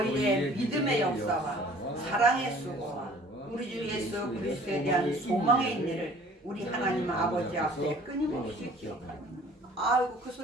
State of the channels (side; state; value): both; normal; correlation 0.52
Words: 믿음의 역사와 사랑의 수고와 우리 주 예수 그리스도에 대한 소망의 인내를 우리 하나님 아버지 앞에 끊임없이 기억하라. 아이고 그